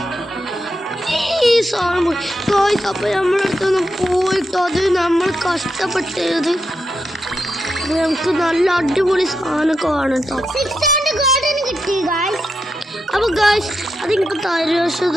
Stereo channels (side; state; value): both; normal; correlation 0.85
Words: ഈ സാധനം പോയി ഗായ്സ്. അപ്പൊ നമ്മളടുത്തൊന്ന് പോയിട്ടോ അത് നമ്മൾ കഷ്ടപ്പെട്ടത് നമുക്ക് നല്ല അടിപൊളി സാധനം കാണും കേട്ടോ. അപ്പൊ ഗായ്സ് അത് എനിക്ക് തരുമോ